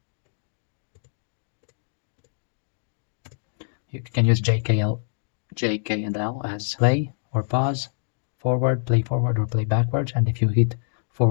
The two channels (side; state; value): right; silent; digital silence